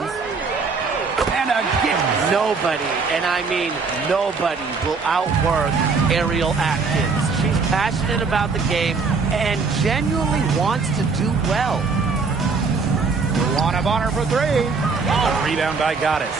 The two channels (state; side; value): quieter; left; 4.7 dB